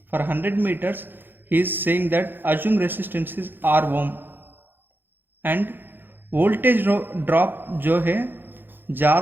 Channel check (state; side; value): late; left; 0.097 ms